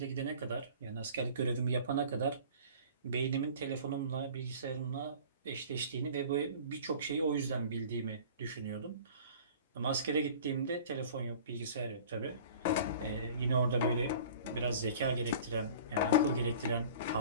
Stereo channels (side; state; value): both; inverted; correlation -0.44